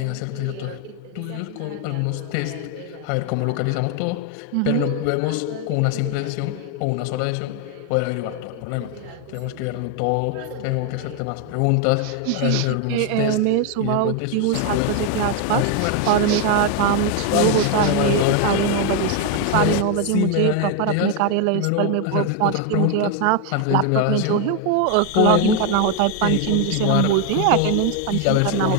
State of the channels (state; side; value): different; both; correlation 0.01